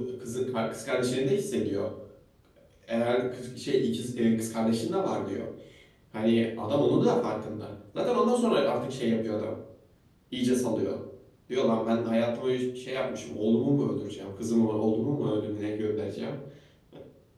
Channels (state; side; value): identical; both; correlation 1.00